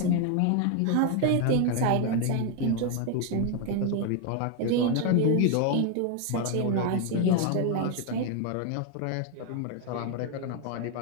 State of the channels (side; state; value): both; different; correlation 0.01